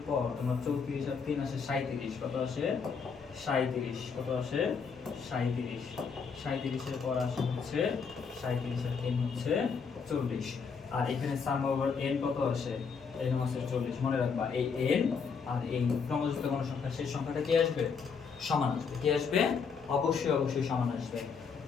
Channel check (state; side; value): quieter; right; 5.8 dB